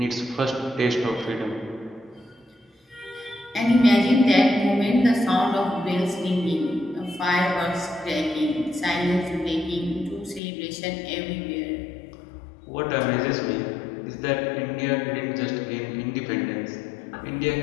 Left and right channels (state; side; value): drops out; right; at 10.4 s